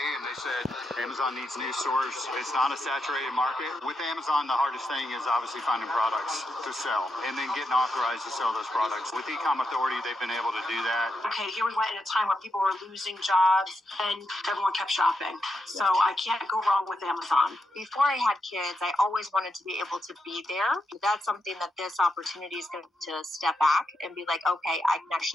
and they said Amazon needs new stores. It's not a saturated market. With Amazon, the hardest thing is obviously finding products to sell and then getting authorized to sell those products. With Ecom Authority, they've been able to do that. Okay, here we went in a time where people were losing jobs and everyone kept shopping. So I can't go wrong with Amazon. Before I had kids, I always wanted to be able to be there. That's something that this opportunity is going to step back and be like, okay, I can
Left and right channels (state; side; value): normal; both; correlation 0.84